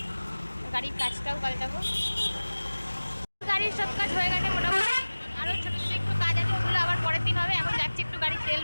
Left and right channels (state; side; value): inverted; both; correlation -1.00